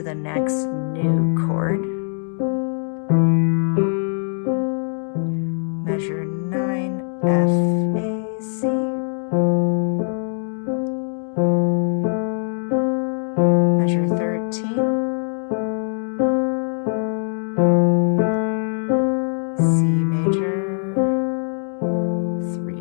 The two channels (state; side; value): silent; right; digital silence